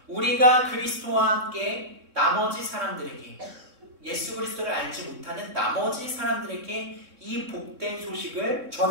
우리가 그리스도와 함께 나머지 사람들에게, 예수 그리스도를 알지 못하는 나머지 사람들에게 이 복된 소식을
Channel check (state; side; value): late; left; 3.6 ms